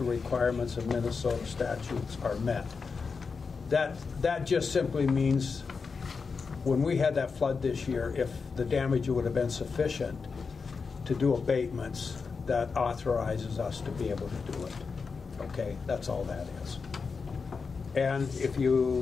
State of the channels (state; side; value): quieter; right; 5.0 dB